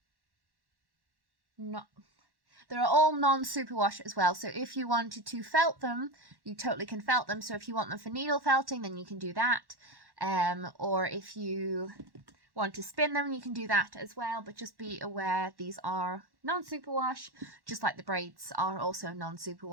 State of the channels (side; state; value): left; late; 1.1 ms